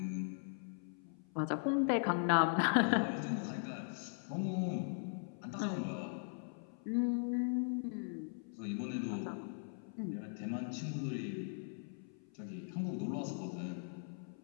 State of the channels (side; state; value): right; silent; 51 dB below the other